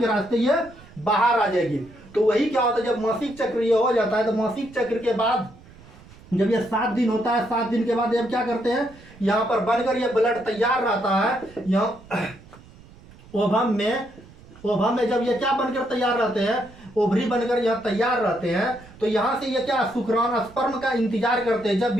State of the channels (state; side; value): noise; right; rumble, 22 dB below the sound